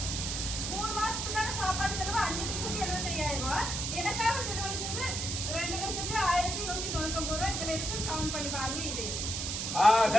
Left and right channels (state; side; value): noise; right; hiss, 2 dB below the sound